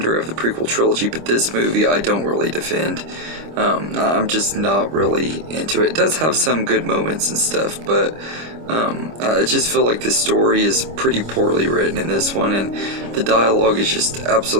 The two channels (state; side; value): late; left; 25 ms